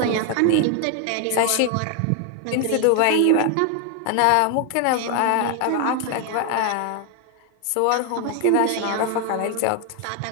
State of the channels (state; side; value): different; both; correlation 0.01